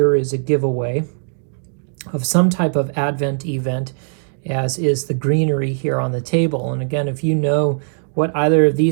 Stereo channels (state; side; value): silent; left; digital silence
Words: is a giveaway of some type of Advent event, as is the greenery here on the table. And again, if you know what either of